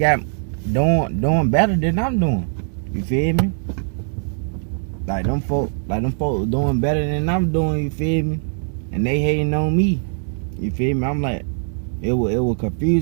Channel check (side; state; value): left; silent; digital silence